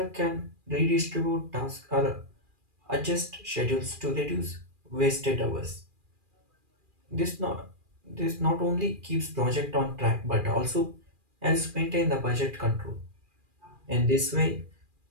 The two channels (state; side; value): late; left; 2.4 ms